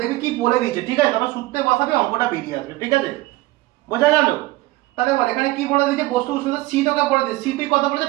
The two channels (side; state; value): left; quieter; 19.3 dB